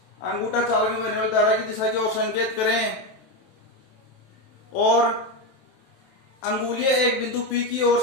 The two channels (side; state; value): right; late; 27 ms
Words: अंगूठा चालक में बहने वाली धारा की दिशा की ओर संकेत करें और अंगुलियां एक बिंदु P की ओर